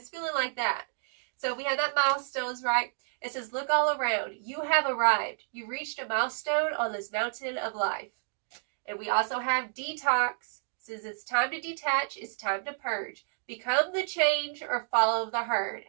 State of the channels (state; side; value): silent; left; digital silence